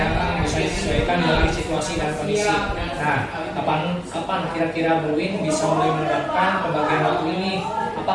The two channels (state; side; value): identical; both; correlation 1.00